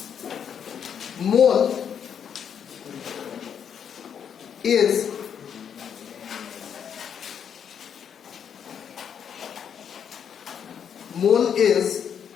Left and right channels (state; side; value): quieter; right; 8.0 dB